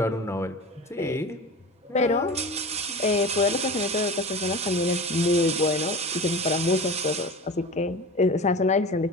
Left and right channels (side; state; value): both; normal; correlation 0.32